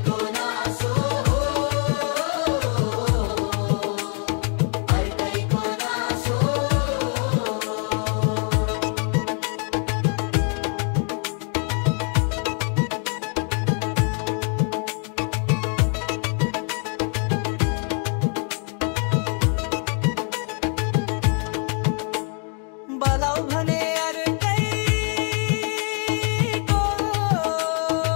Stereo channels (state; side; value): quieter; right; 39.7 dB